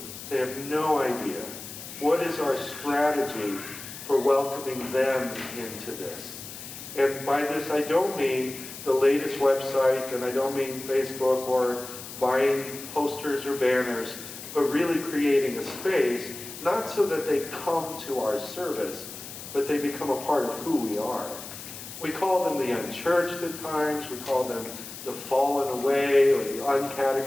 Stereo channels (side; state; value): left; noise; hiss, 12 dB below the sound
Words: They have no idea. What is our strategy for welcoming them into this? And by this I don't mean the latest website, and I don't mean Facebook or buying posters or banners, but really creating a space, not so that they come to our service, but they become a part of who we are. We call them the unchurched at times, we call them the fallen away or the